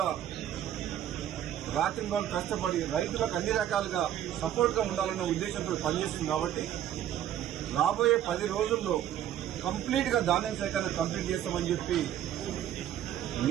రాత్రింబాలు కష్టపడి రైతులకు అన్ని రకాలుగా సపోర్ట్ గా ఉండాలన్న ఉద్దేశంతో పనిచేస్తుంది. కాబట్టి రాబోయే 10 రోజుల్లో కంప్లీట్ గా ధాన్యం సేకరణ కంప్లీట్ చేస్తామని చెప్పి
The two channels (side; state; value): left; quieter; 11.2 dB